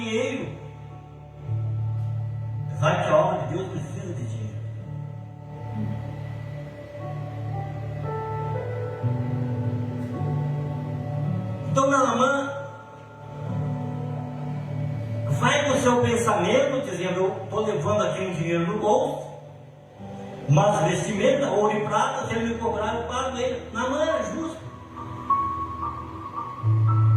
Apesar que a obra de Deus precisa de dinheiro. Então Naamã vai com o seu pensamento, dizendo, eu estou levando aqui um dinheiro no bolso, mas vestimenta, ouro e prata, se ele me cobrar, eu pago ele. Naamã é justo.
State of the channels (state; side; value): identical; both; correlation 1.00